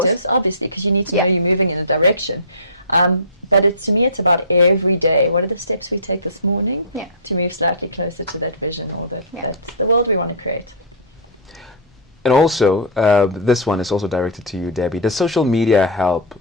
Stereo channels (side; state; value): both; normal; correlation -0.20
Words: obviously, because you need to know you're moving in a direction. But to me, it's about every day. What are the steps we take this morning to move slightly closer to that vision or that's the world we want to create? And also, this one is also directed to you, Debbie. Does social media help